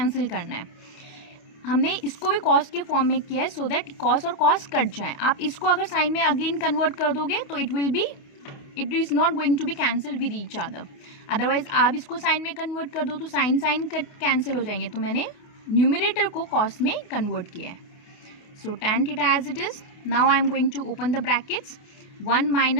करना है. हमने इसको भी cos के फॉर्म में किया है सो दैट cos और cos कट जाए. आप इसको अगर साइन में अगेन कन्वर्ट कर दोगे तो it is not going to be cancel with each other. Otherwise आप इसको साइन में कन्वर्ट कर दो तो साइन कट कैंसिल हो जाएंगे. तो मैंने न्यूमरेटर को cos में कन्वर्ट किया है. So tan theta as it is. Now I am going to open the brackets. 1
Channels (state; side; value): late; right; 28 ms